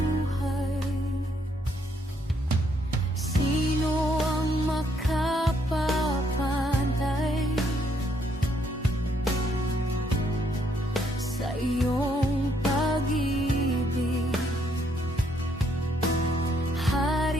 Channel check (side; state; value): both; normal; correlation 0.71